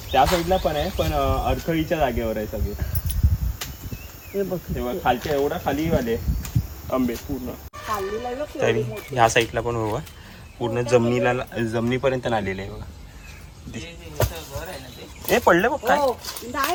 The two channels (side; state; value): both; identical; correlation 1.00